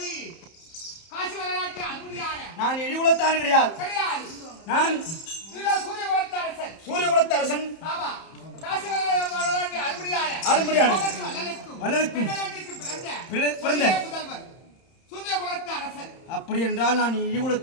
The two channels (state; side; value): late; right; 31 ms